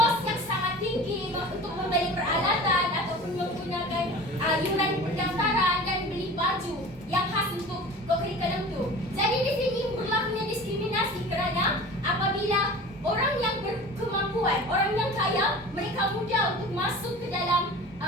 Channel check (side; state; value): both; normal; correlation 0.38